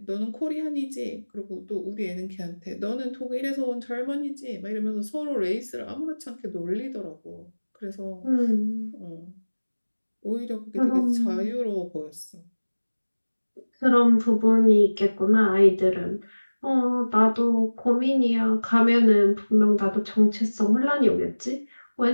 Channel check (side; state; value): both; inverted; correlation -1.00